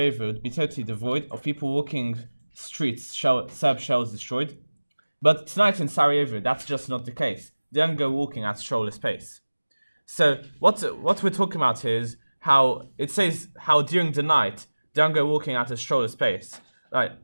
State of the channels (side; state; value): both; inverted; correlation -1.00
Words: would be totally devoid of people walking streets, Serb shells destroyed. But tonight in Sarajevo, that's just not the case. They don't go walking at stroller pace. So what we're talking about here is how it says how during the night they don't go walking at a stroller pace. Like